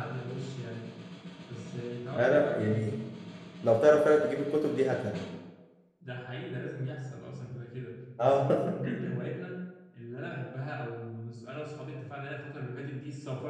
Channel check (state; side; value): identical; both; correlation 1.00